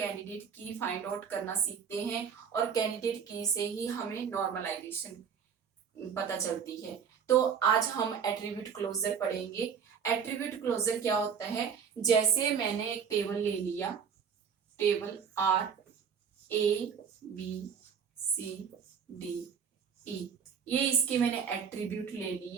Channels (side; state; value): left; quieter; 7.1 dB